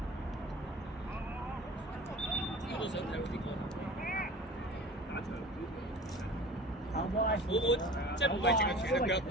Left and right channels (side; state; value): both; normal; correlation 0.40